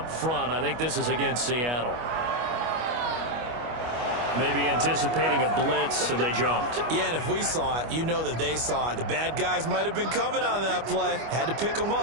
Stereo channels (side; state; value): left; late; 25 ms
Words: front. I think this is against Seattle. Maybe anticipating a blitz, so they jumped. Yeah, and if we saw it, you know that they saw it. The bad guys might have been coming on that play. Had to pick them